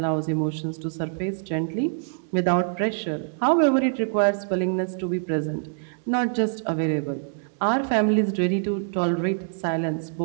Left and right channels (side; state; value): left; silent; digital silence